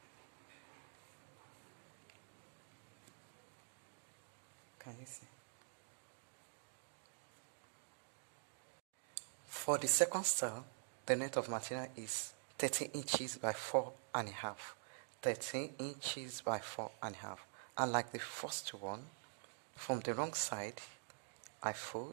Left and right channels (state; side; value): silent; left; digital silence